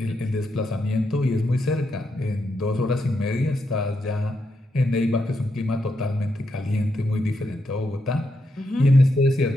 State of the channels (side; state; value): both; normal; correlation 0.82